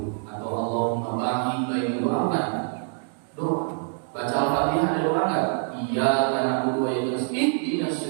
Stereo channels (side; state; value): left; silent; 59 dB below the other